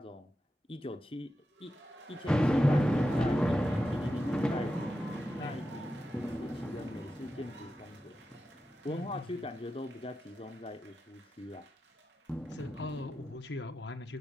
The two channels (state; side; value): normal; both; correlation 0.90